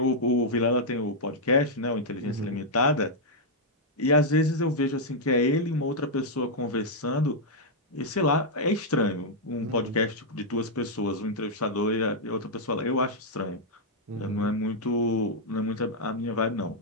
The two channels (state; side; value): normal; both; correlation -0.05